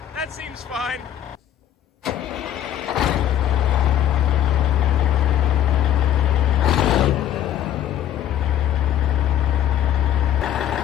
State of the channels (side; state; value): right; quieter; 10.7 dB